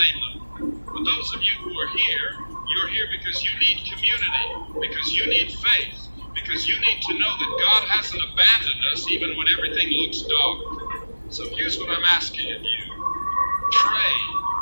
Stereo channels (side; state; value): both; inverted; correlation -1.00